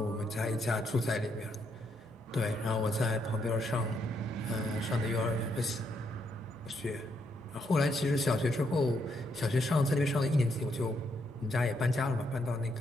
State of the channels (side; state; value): both; normal; correlation 0.76